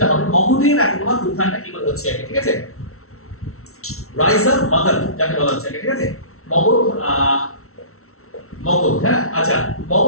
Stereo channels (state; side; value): late; right; 0.63 ms